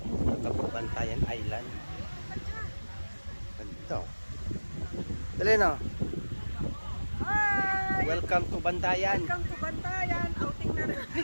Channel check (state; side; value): inverted; both; correlation -1.00